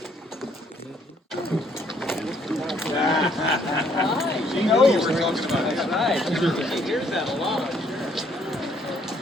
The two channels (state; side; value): normal; both; correlation 0.66